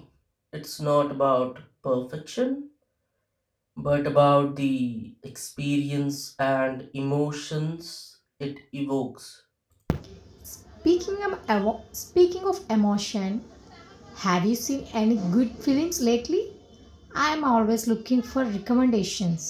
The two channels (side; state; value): both; identical; correlation 1.00